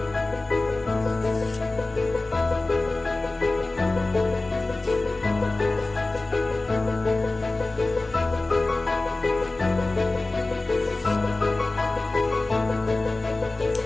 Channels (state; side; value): quieter; right; 3.1 dB